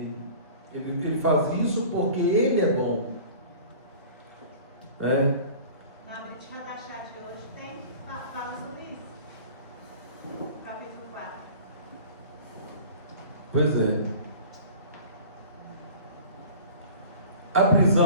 Ele faz isso porque Ele é bom. Na Brit Hadashah de hoje fala sobre isso. No capítulo 4. Pois é. A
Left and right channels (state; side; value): inverted; both; correlation -0.43